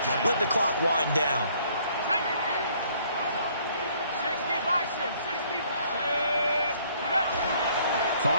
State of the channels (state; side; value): inverted; both; correlation -0.62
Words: Let the clock wind down.